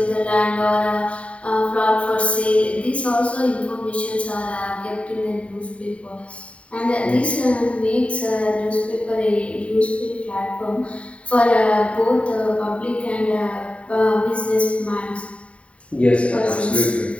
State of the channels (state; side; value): late; right; 0.063 ms